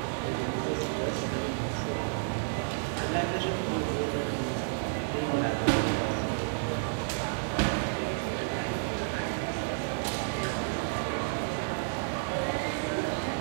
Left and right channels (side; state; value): left; silent; digital silence